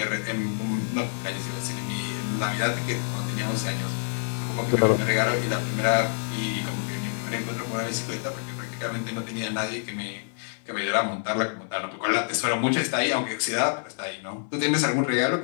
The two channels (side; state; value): right; silent; 60 dB below the other